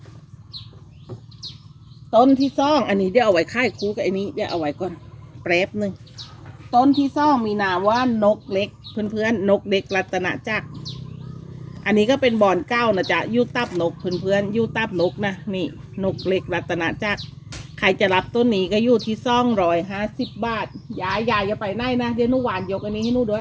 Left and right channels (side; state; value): both; identical; correlation 1.00